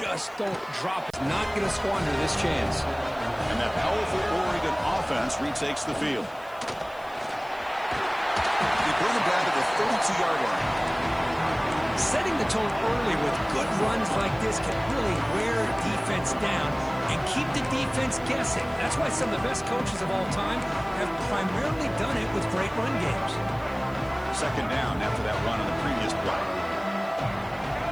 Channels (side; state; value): right; noise; hiss, 27 dB below the sound